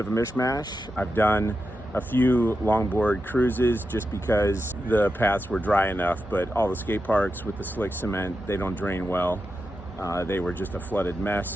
a mishmash. I've done a few longboard cruises just because the paths were dry enough, but all the skate parks with the slick cement, they don't drain well. They were just a flooded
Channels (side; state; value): both; normal; correlation 0.89